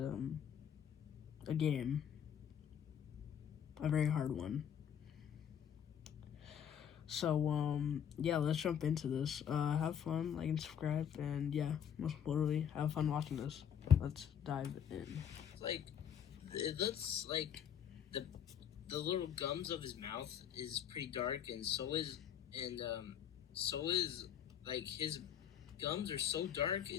a game, a very hard one. So, yeah, let's jump into this. Have fun, like and subscribe, and yeah, most importantly, have fun watching this. Let's dive in. It looks like the little gums of his mouth is pretty dark, and so is like his gums are so dark.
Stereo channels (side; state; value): right; quieter; 8.8 dB